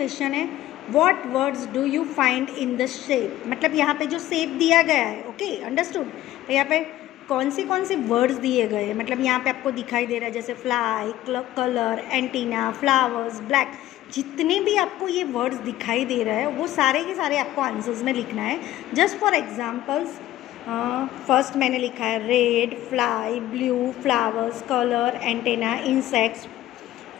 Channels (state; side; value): quieter; right; 14.4 dB